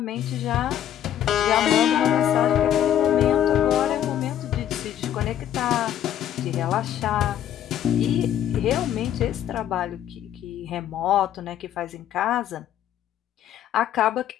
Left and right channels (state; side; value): quieter; right; 10.6 dB